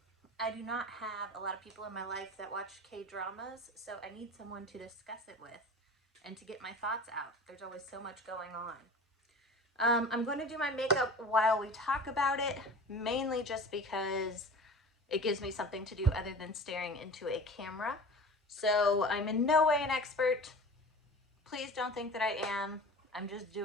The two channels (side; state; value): both; normal; correlation 0.38